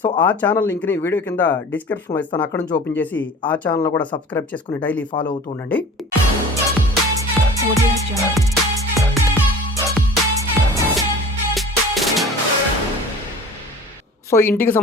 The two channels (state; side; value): normal; both; correlation 0.41